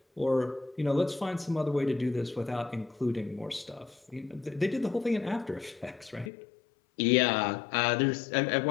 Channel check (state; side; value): drops out; right; at 6.3 s